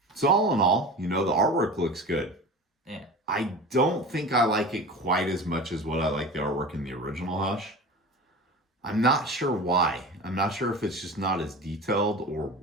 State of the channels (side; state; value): both; normal; correlation 0.33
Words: So all in all, the artwork looks good. Yeah. I don't think I like it quite as much as what I like the artwork in the original Hush. I'm not sure why. I'm not sure if it's just not as detailed or